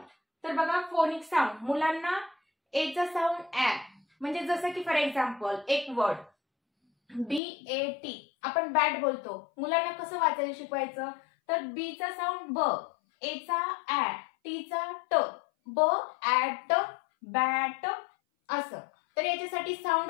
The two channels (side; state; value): right; drops out; at 7.4 s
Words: तर बघा, फोनिक साऊंड मुलांना A चा साऊंड ॲ, म्हणजे जसं की फॉर एक्झाम्पल एक वर्ड BAT आपण बॅट बोलतो. मुलांना कसं वाचायला शिकवायचं, तर B चा साऊंड ब, A चा ॲ, T चा ट, ब ॲट बॅट असं. तर याच्यासाठी साऊंड